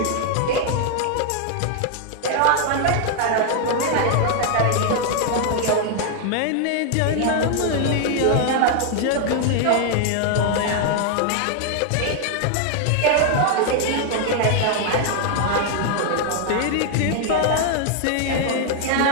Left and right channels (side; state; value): both; different; correlation 0.00